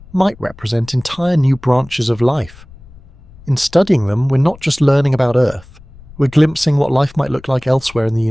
might represent entire new branches of life. In studying them, we're not just learning about Earth, we're glimpsing what life might look like elsewhere in the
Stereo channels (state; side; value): noise; left; rumble, 22 dB below the sound